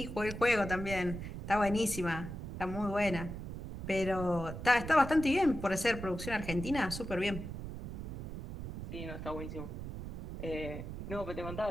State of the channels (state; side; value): noise; right; rumble, 7 dB below the sound